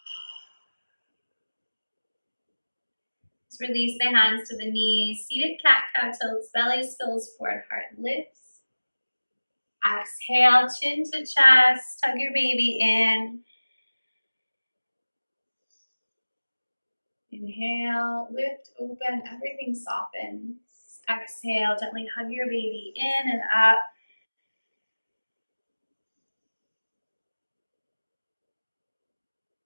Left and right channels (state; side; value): inverted; both; correlation -1.00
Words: Just release the hands to the knees. Seated cat-cow tilts, belly spills forward, heart lifts. Exhale, chin to chest, tug your baby in. Inhale, lift, open, everything softens. Exhale, gently hug your baby in and up.